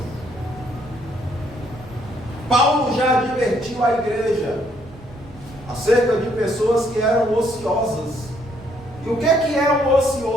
Paulo já advertiu a igreja acerca de pessoas que eram ociosas E o que é um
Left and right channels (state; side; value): noise; right; rumble, 20 dB below the sound